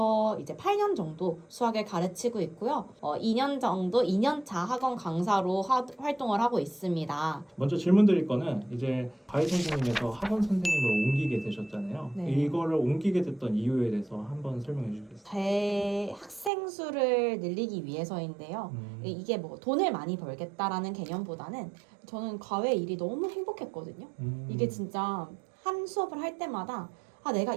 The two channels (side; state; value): left; drops out; at 16.5 s